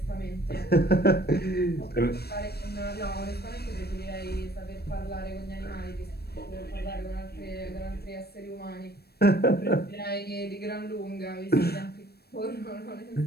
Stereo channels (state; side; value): late; right; 0.47 ms